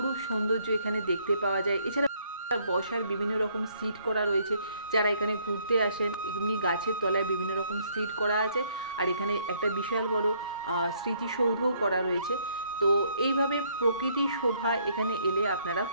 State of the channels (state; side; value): inverted; both; correlation -0.67